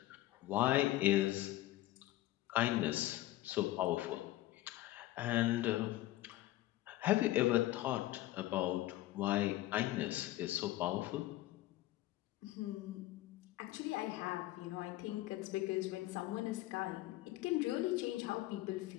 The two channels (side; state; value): right; quieter; 16.2 dB